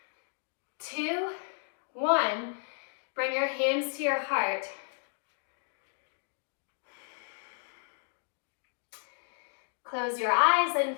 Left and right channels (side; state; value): right; silent; 56 dB below the other